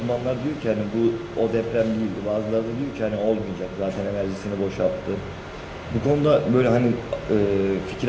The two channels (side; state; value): both; identical; correlation 1.00